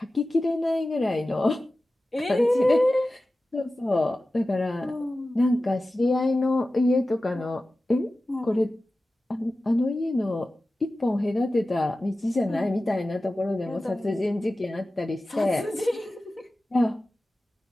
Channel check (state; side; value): normal; both; correlation 0.95